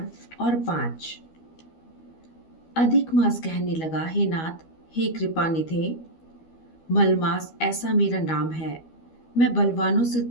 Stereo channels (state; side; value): late; right; 12 ms